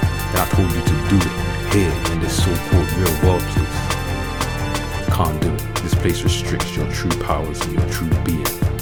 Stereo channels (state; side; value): identical; both; correlation 1.00